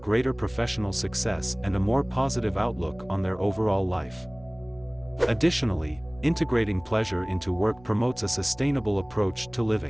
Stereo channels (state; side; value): noise; left; rumble, 24 dB below the sound